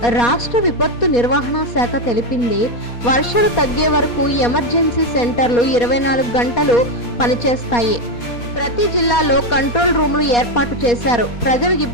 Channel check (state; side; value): late; right; 4.2 ms